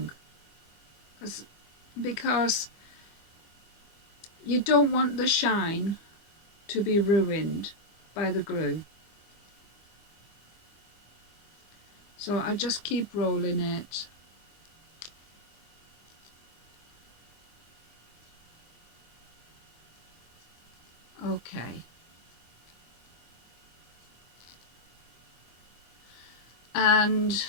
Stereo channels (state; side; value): late; right; 24 ms